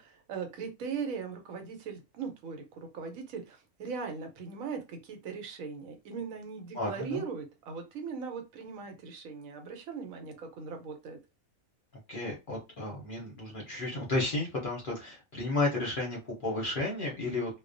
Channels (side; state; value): both; normal; correlation 0.21